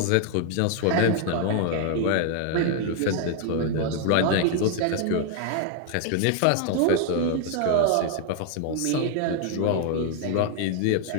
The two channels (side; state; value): both; different; correlation 0.00